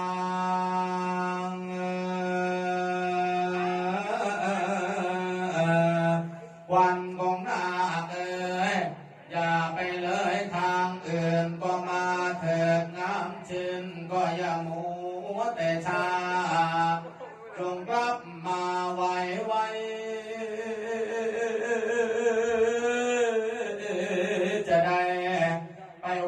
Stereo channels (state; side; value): identical; both; correlation 1.00